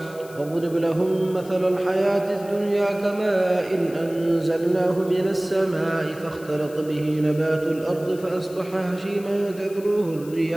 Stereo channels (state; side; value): noise; left; hiss, 21 dB below the sound